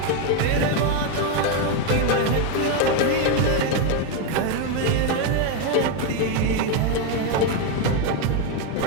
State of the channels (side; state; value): both; different; correlation 0.01